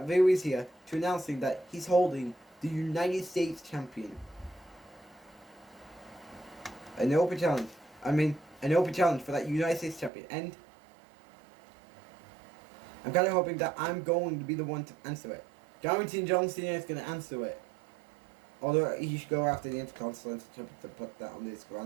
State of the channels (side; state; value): left; drops out; at 10.1 s